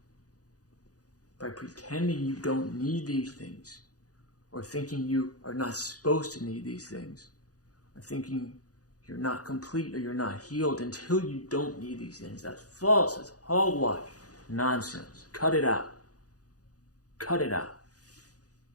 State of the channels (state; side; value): late; right; 0.67 ms